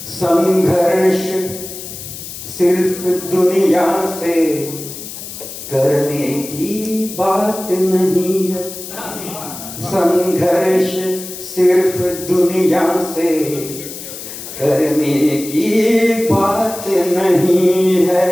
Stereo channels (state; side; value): noise; left; hiss, 11 dB below the sound